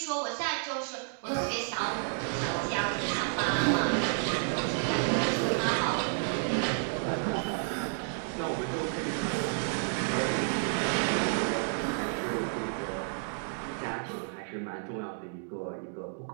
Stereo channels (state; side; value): silent; left; 57 dB below the other